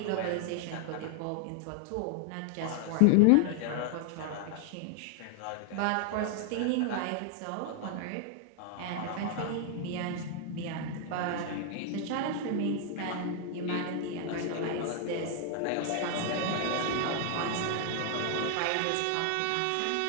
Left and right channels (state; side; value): different; both; correlation 0.00